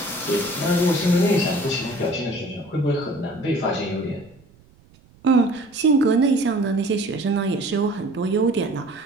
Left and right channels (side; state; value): right; noise; rumble, 28 dB below the sound